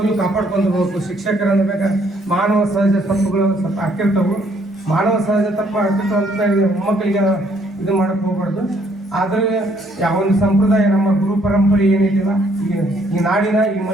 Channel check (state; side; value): normal; both; correlation 0.67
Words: ಕಾಪಾಡ್ಕೊಂಡು ಹೋಗ್ಬೇಕು. ಶಿಕ್ಷಕರನ್ನು ಬೇಕಾ ಮಾನವ ಸಹಜ ತಪ್ಪುಗಳು ಸ್ವಲ್ಪ ಹಾಕಿರ್ತಾವೆ. ಮಾನವ ಸಹಜ ತಪ್ಪು ಹಾಕಿರ್ತಾವೆ ಅಂತ ಮೊಮ್ಮಕ್ಕಳಿಗೆ ಇದು ಮಾಡೋಕ್ಕೆ ಹೋಗ್ಬಾರ್ದು. ಆದ್ರೆ ಯಾವ ಒಂದು ಸಂಪ್ರದಾಯ ನಮ್ಮ ಗುರು ಪರಂಪರೆ ಏನಿದೆಯಲ್ಲ ಈ ನಾಡಿನ ಈ